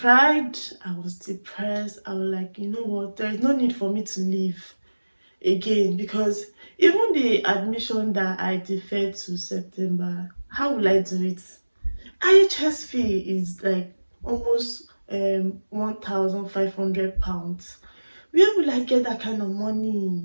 I was depressed. I was like, you know what, there is no need for me to leave again, because even the admission that I deferred to September, how will I do it? IHS fee is like almost £1,500. Where will I get that kind of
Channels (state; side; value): inverted; both; correlation -1.00